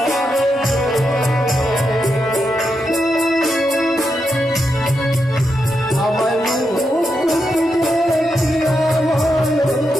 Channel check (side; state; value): both; normal; correlation 0.85